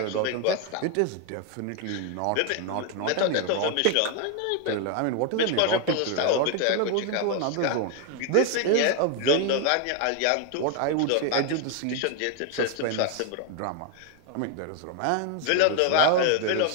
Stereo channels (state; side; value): different; both; correlation 0.00